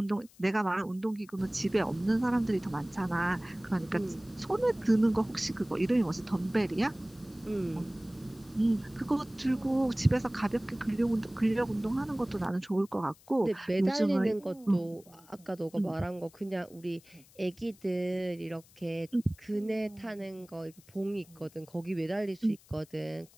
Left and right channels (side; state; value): left; noise; hiss, 26 dB below the sound